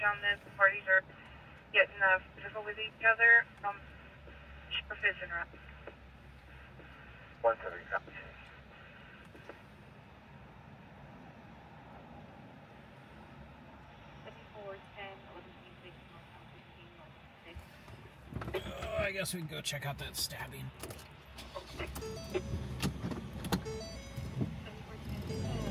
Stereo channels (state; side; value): identical; both; correlation 1.00